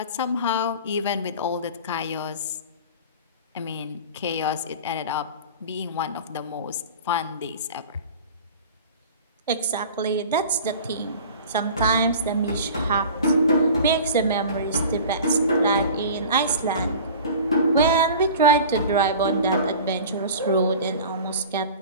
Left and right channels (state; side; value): inverted; both; correlation -0.39